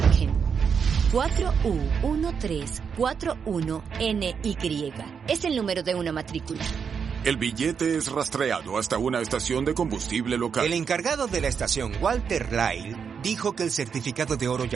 4U1341NY. Es el número de una matrícula. El billete es rastreado hasta una estación de combustible local. El encargado de la estación, Walter Lyle, dijo que el certificado de oro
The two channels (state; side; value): quieter; left; 6.6 dB